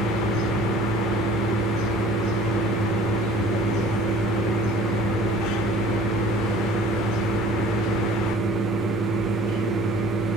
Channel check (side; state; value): both; normal; correlation 0.49